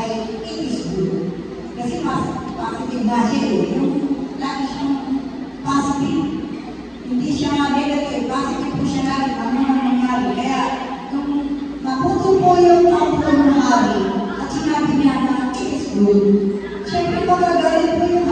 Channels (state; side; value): identical; both; correlation 1.00